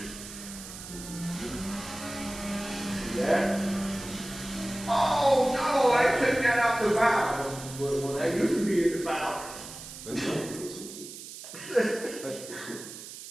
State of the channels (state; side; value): noise; right; hiss, 12 dB below the sound